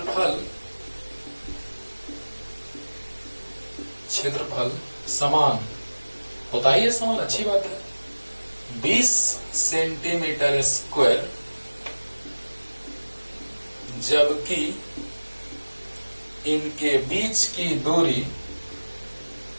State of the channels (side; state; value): both; inverted; correlation -1.00